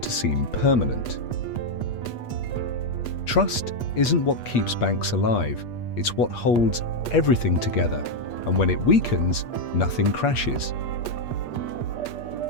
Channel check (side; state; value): right; late; 8.4 ms